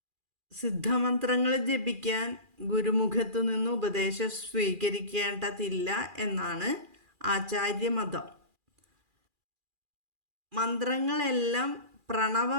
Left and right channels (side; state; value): left; late; 2.4 ms